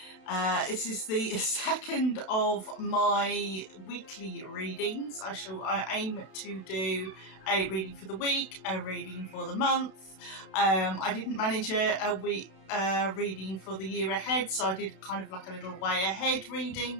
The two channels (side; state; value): right; late; 32 ms